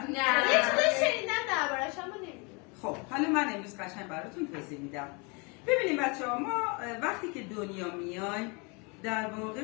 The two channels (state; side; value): quieter; right; 31.0 dB